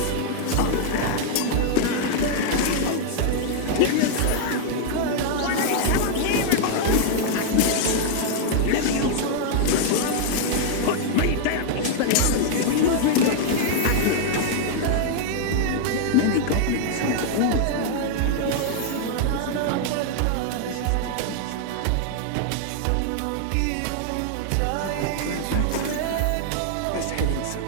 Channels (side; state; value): both; different; correlation -0.01